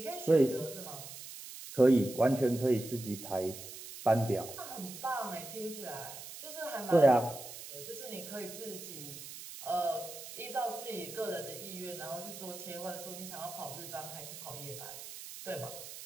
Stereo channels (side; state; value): right; noise; hiss, 12 dB below the sound